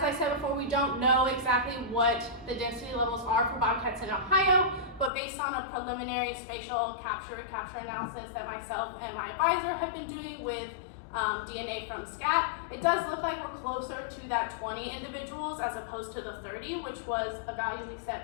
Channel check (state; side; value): drops out; right; at 5.1 s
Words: I said before, we don't know exactly what the density levels are for bobcats in Ohio, but based on a preliminary spatial capture analysis that myself and my advisor have been doing with DNA from scat, it does look like we're closer to that 20 individuals as opposed to the 30, which was a value we